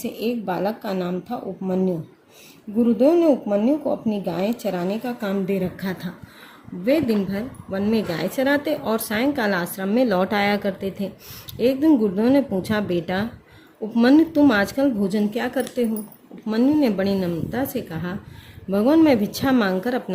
एक बालक का नाम था उपमन्यु। गुरुदेव ने उपमन्यु को अपनी गायें चराने का काम दे रखा था। वे दिन भर वन में गाय चराते और सायंकाल आश्रम में लौट आया करते थे। एक दिन गुरुदेव ने पूछा, बेटा उपमन्यु, तुम आजकल भोजन क्या करते हो? उपमन्यु ने बड़ी नम्रता से कहा, भगवान, मैं भिक्षा मांगकर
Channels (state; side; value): identical; both; correlation 1.00